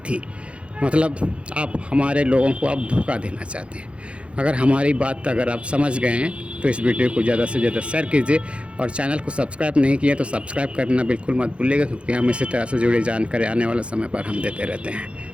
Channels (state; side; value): late; left; 0.060 ms